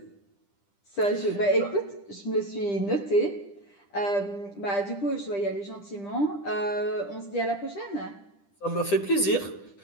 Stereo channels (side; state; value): right; late; 10 ms